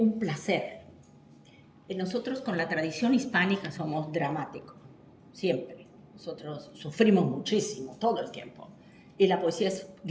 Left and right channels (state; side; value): identical; both; correlation 1.00